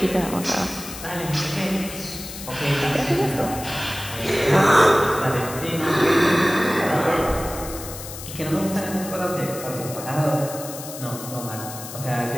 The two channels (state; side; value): noise; left; hiss, 11 dB below the sound